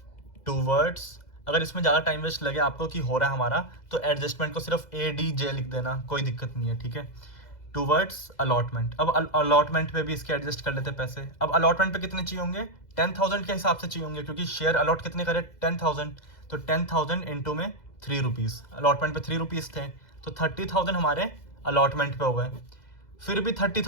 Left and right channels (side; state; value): right; late; 2.0 ms